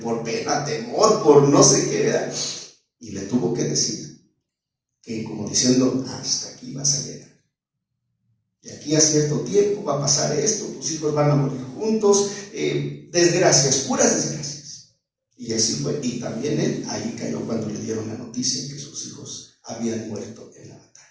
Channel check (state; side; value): identical; both; correlation 1.00